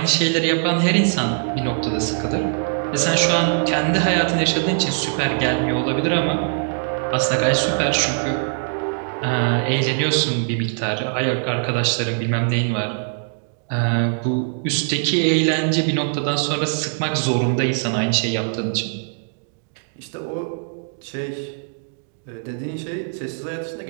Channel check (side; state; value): left; silent; digital silence